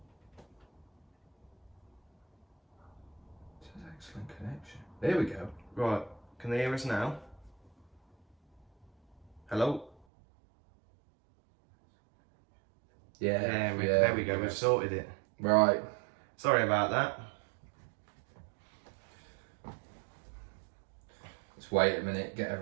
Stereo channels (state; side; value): drops out; left; at 10.0 s